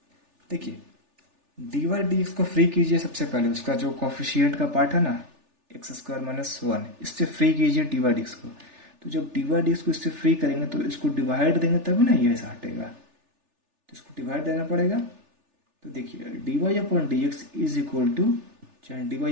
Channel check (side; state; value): left; late; 3.4 ms